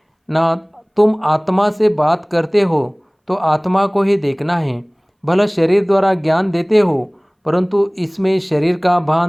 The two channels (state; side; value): identical; both; correlation 1.00